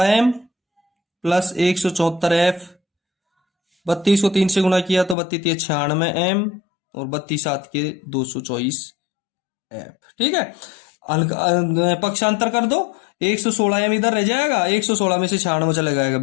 प्लस 174F। 32 को 3 से गुणा किया तो 32 96M और 32 7 के 224F। ठीक है। पक्षांतर कर दो, 116M इधर रह जाएगा, 116 में से 96 चला जाएगा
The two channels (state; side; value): drops out; right; at 5.2 s